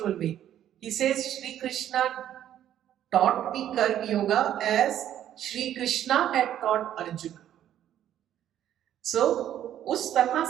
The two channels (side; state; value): left; quieter; 11.2 dB